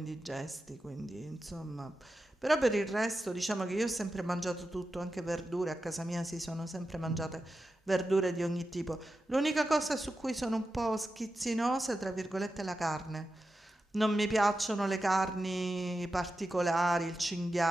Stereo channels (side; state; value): both; normal; correlation 0.91